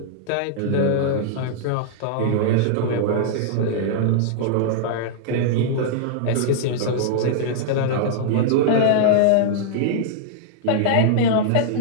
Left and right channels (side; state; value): both; different; correlation -0.02